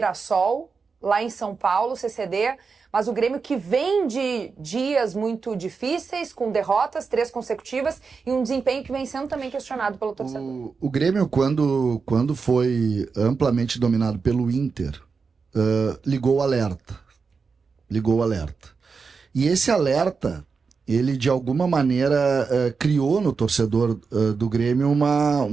lá em São Paulo, CCD. Mas o Grêmio que vem de dias muito difíceis, com derrotas, 3 consecutivas, e um desempenho que vem sendo também questionado pelo torcedor. O Grêmio, quando foi amplamente dominado pelo Inter, ligou o alerta. E esse alerta, ele de alguma maneira criou no torcedor do Grêmio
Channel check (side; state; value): left; quieter; 5.1 dB